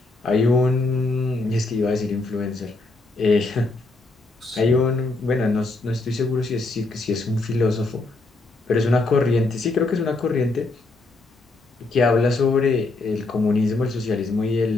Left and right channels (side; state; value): right; quieter; 3.3 dB